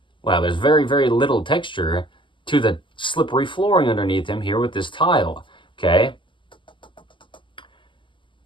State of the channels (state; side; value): late; right; 0.24 ms